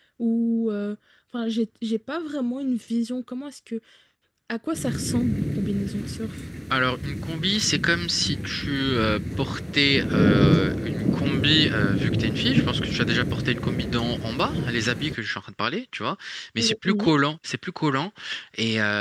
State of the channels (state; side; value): identical; both; correlation 1.00